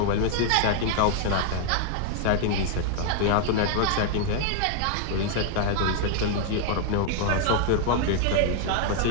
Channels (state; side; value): different; both; correlation 0.00